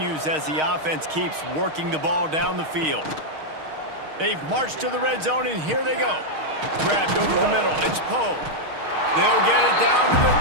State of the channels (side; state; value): left; late; 6.4 ms